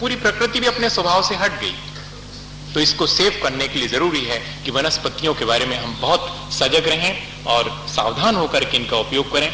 प्रकृति भी अपने स्वभाव से हट गई। तो इसको सेव करने के लिए जरूरी है कि वनस्पतियों के बारे में हम बहुत सजग रहें और सावधान होकर के इनका उपयोग करें।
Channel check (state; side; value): identical; both; correlation 1.00